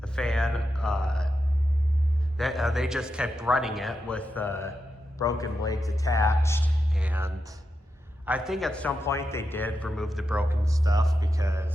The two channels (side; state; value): both; normal; correlation 0.87